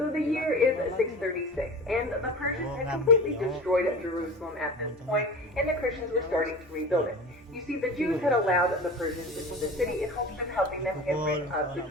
the year is 636, and the Persians had completely destroyed Jerusalem at this point, and the Christians were starting to rebuild it. You see, the Jews had allowed the Persians into the city in hopes of helping them get rid of the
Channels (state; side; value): normal; both; correlation 0.34